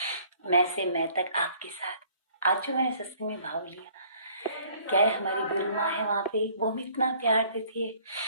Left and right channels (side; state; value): both; inverted; correlation -0.58